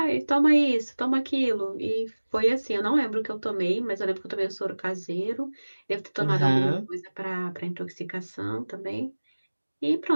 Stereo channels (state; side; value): inverted; both; correlation -1.00